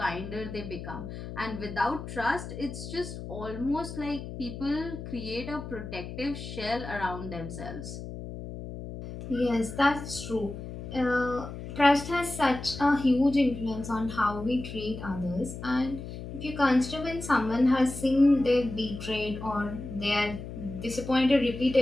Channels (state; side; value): noise; left; hum, 9 dB below the sound